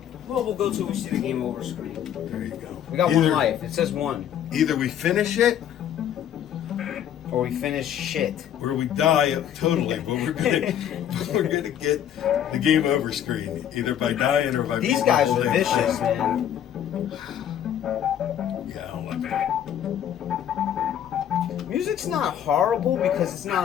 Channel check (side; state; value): right; quieter; 10.0 dB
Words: Well, we'll go till we see the game over screen. there you go. We got one life. It says one. Either we finish it Or we finish shit. or we die totally, but we're gonna get the game over screen either by dying or by These guys are holding vicious, it. man. Yeah, I don't like it. Music's not horrible because it's